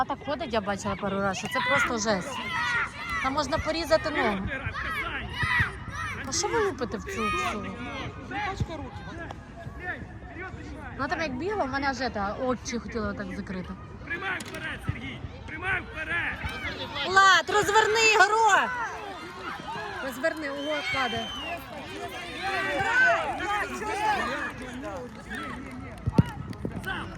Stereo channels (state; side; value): identical; both; correlation 1.00